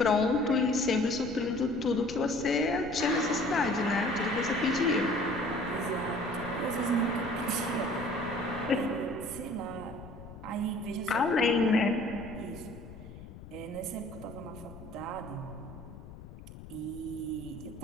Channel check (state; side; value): noise; left; rumble, 15 dB below the sound